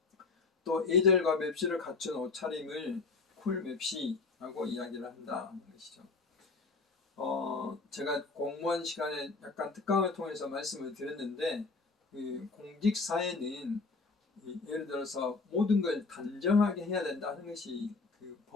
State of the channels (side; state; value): right; quieter; 4.1 dB